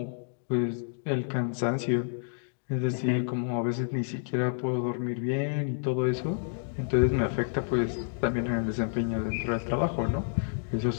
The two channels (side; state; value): right; silent; digital silence